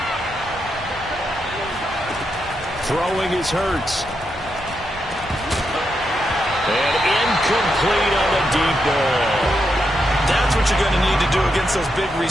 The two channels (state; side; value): normal; both; correlation 0.83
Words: Throwing is Hurts. And incomplete on the deep ball. That's what you're going to need to do against those big